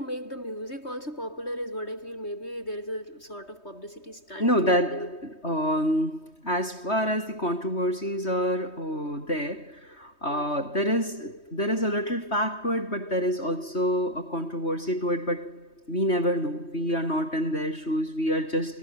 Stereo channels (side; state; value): right; late; 3.2 ms